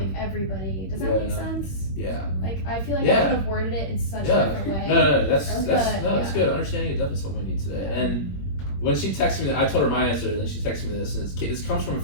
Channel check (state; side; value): late; right; 21 ms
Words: everybody. Does that make sense? Yeah. Like, I feel like I could have worded it in such a different way. No, that's good. Understanding is definitely something we need today. And when she texted me, I told her my answer, and then she texted me this, and this comes from a